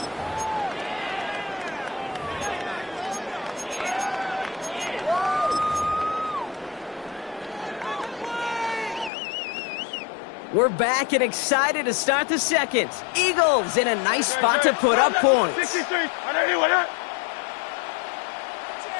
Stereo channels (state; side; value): drops out; right; at 9.1 s